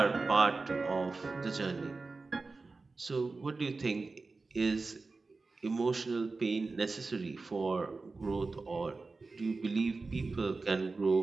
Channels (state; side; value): quieter; left; 3.9 dB